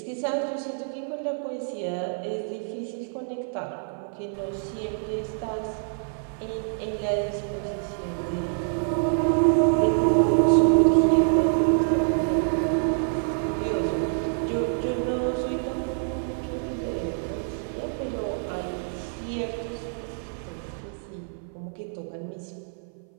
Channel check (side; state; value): left; silent; 57 dB below the other